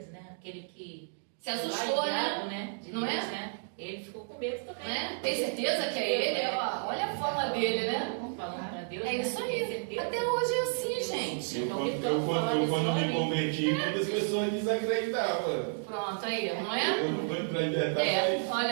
né? Aquele que se assustou, né? De não Deus, é? Né? Ele ficou com medo também. Né? Tem certeza que é ele? Olha a forma dele, né? Falando pra Deus. É isso aí. Até hoje é assim, gente. Quando me converti, muitas pessoas desacreditavam. Pronto, aí, não é? Eu não vou entrar em detalhes. Olha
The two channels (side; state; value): left; silent; digital silence